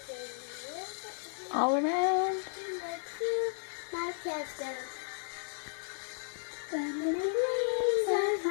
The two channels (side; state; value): right; silent; digital silence